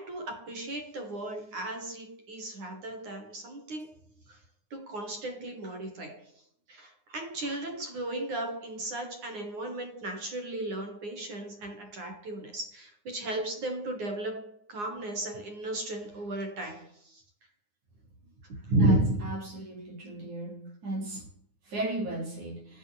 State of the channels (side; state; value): left; late; 9.7 ms